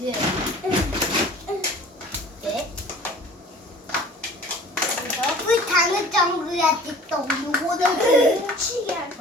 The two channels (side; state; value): both; normal; correlation 0.46